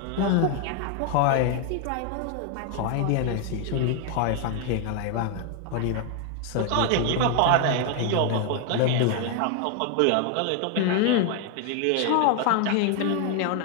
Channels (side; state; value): both; different; correlation 0.01